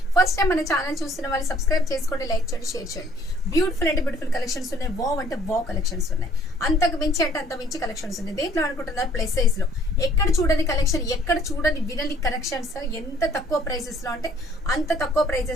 ఫస్ట్ టైం మన ఛానల్ చూస్తున్న వాళ్ళు సబ్స్క్రైబ్ చేసుకోండి, లైక్ చేయండి, షేర్ చేయండి. బ్యూటిఫుల్ అంటే బ్యూటిఫుల్ కలెక్షన్స్ ఉన్నాయి, వావ్ అంటే వావ్ కలెక్షన్స్ ఉన్నాయి, అంతకు మించి అంటే అంత మించి కలెక్షన్స్ ఉన్నాయి. దేంట్లో అనుకుంటున్నారు? ప్లస్ సైజ్ లో ఎక్కడ చూడని కలెక్షన్, ఎక్కడ చూడని వినని కలెక్షన్స్, ఎంత తక్కువ ప్రైసెస్ లో అంటే అంత తక్కువ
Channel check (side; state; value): both; normal; correlation 0.59